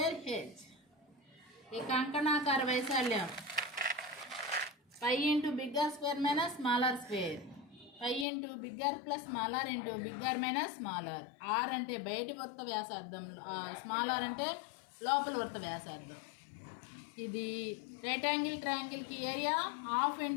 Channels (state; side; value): drops out; right; at 8.2 s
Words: H. ఈ కంకణాకార వైశాల్యం π into bigger square minus smaller square. π into bigger plus smaller into bigger minus smaller. R అంటే బయటి వృత్త వ్యాసార్థం, స్మాలర్ అంటే లోపల వృత్త వ్యాసార్థం. ఇది రైట్ యాంగిల్ ట్రయాంగిల్కి ఏరియా హాఫ్